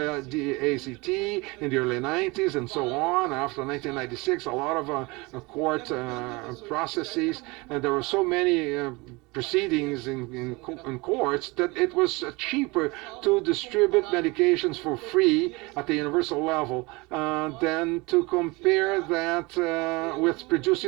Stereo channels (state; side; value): quieter; left; 25.0 dB